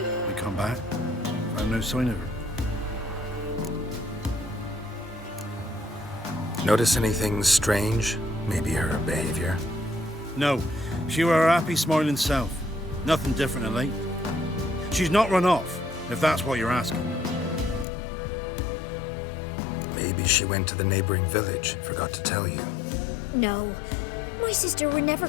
We come back, found no sign of her. Notice anything strange? Maybe her behavior? No, she were her happy, smiling self. Nothing different than late. She's not run off, if that's what you're asking. Maybe she went to the neighboring village, forgot to tell you. No, my sister were never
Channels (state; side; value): drops out; right; at 17.9 s